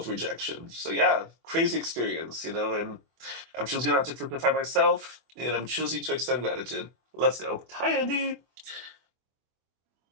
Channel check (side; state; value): left; late; 24 ms